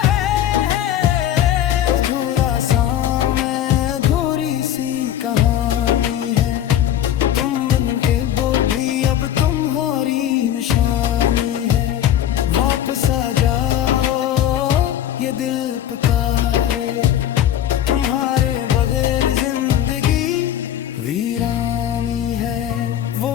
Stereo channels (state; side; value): quieter; right; 11.0 dB